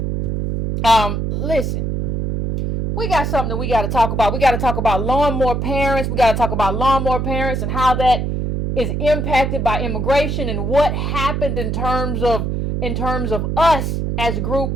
Listen. We got something that we got to talk about. We got to talk about lawnmower parents. We got to talk about lawnmower parents and how that is impacted by immigration and what happened in terms of us as a group.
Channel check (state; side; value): noise; right; hum, 1 dB below the sound